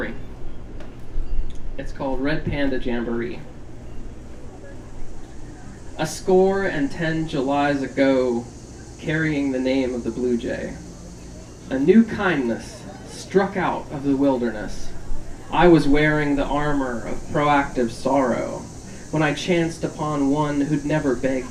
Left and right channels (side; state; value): both; identical; correlation 1.00